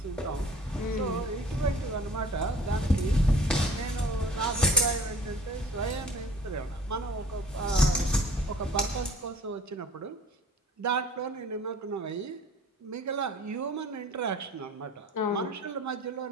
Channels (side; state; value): both; normal; correlation 0.48